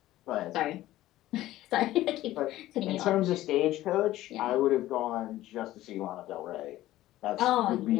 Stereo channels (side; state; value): right; quieter; 15.2 dB